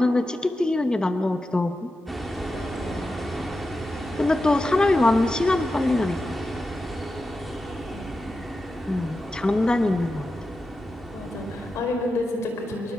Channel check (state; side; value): normal; both; correlation 0.91